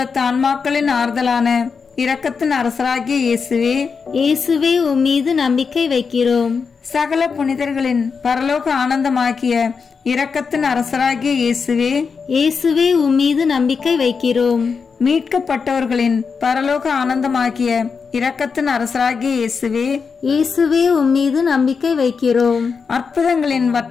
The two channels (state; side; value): quieter; right; 5.5 dB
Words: ஆன்மாக்களின் ஆறுதலான இரக்கத்தின் அரசராகிய இயேசுவே, இயேசுவே உம்மீது நம்பிக்கை வைக்கிறோம். சகல புனிதர்களின் பரலோக ஆனந்தமாகிய இரக்கத்தின் அரசராகிய இயேசுவே, இயேசுவே உம்மீது நம்பிக்கை வைக்கிறோம். மீட்கப்பட்டவர்களின் பரலோக ஆனந்தமாகிய இரக்கத்தின் அரசராகிய இயேசுவே, இயேசுவே உம்மீது நம்பிக்கை வைக்கிறோம். அற்புதங்களின்